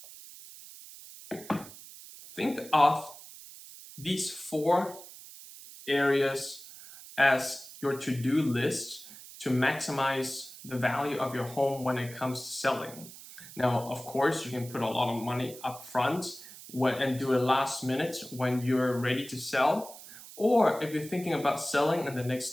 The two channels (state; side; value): noise; right; hiss, 16 dB below the sound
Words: Think of these 4 areas as your to-do list to maximize the value of your home when it comes to selling. Now, of course, you can put a lot of money up front and do it last minute when you're ready to sell. Or if you're thinking about selling in the